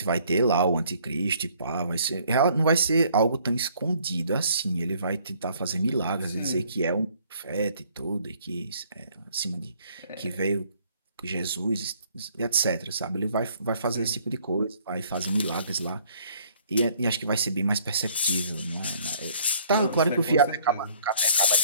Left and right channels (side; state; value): both; inverted; correlation -0.61